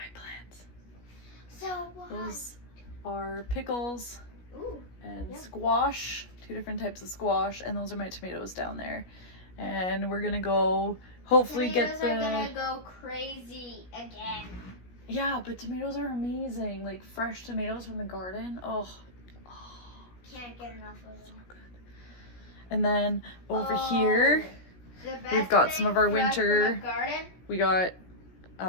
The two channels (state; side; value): late; right; 17 ms